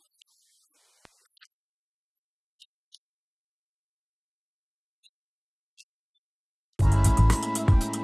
you very much.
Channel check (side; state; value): both; identical; correlation 1.00